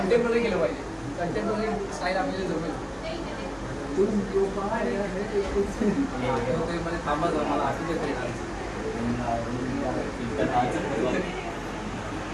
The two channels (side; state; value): both; identical; correlation 1.00